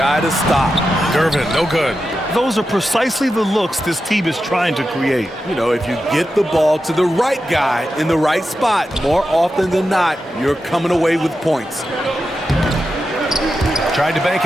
to stop. Gervin, no good. Those are precisely the looks this team is trying to create. You know, if you get the ball to the right guy in the right spot, more often than not, you're coming away with points. Tried to bank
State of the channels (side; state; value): both; normal; correlation 0.90